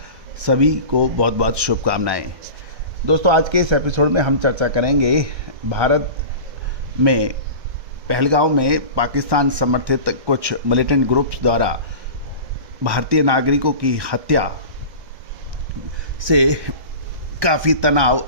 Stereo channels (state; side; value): late; left; 1.2 ms